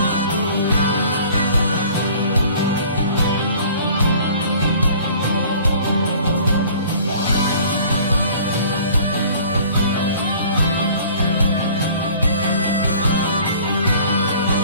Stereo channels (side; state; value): both; inverted; correlation -0.50